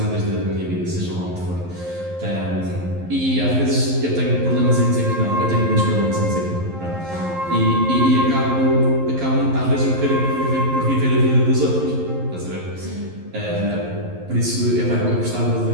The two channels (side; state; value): left; late; 11 ms